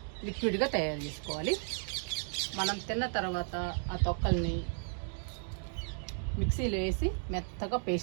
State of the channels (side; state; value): left; silent; 55 dB below the other